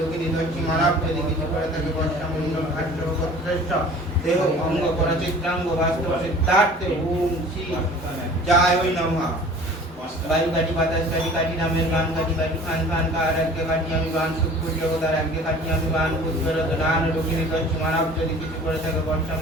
দস্যি মানব যদি কিছু করে থাকে বর্ষা মণ্ডল কাশ্যপ শ্রেষ্ঠ দেহ অঙ্গ পরচিত্রাঙ্গ বাস্তব সিদ্ধার্থে ওম শ্রী জয় ওই নমঃ ভাই কাটি বাতাস কাটি কাটি রামের বান কাটি কাটি খান খান কার আগে কাটি আমি বান সুখপুর জগতার আগে কাটি আমি বান ভূত প্রেরত দান দুগুনি দস্যি মানব যদি কিছু করে থাকে বর্ষা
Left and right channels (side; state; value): both; normal; correlation 0.46